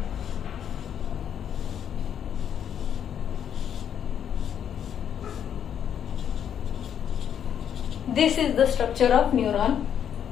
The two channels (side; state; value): right; quieter; 8.9 dB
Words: दिस इज द स्ट्रक्चर ऑफ न्यूरॉन.